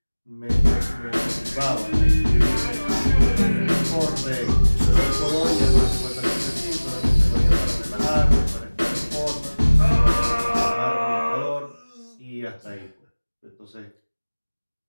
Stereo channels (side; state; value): both; inverted; correlation -1.00